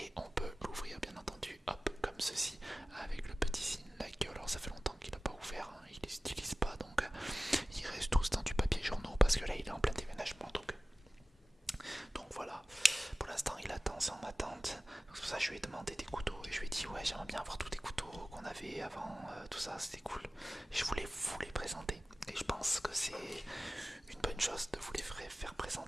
on peut l'ouvrir bien entendu, hop, comme ceci, avec le petit signe Laguiole. Alors ça fait longtemps qu'il n'a pas ouvert, hein, il les utilise pas, donc il reste tous dans du papier journaux parce que là il est en plein déménagement. Donc voilà, pour l'instant il attend, c'est en attente. C'est pour ça que je lui ai demandé des couteaux et je lui ai dit ouais j'aimerais bien avoir tous les couteaux qu'on avait avant, tout ça c'était cool. Je voulais vous les présenter et je pense que c'est une bonne chose de vous les faire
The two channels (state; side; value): normal; both; correlation 0.96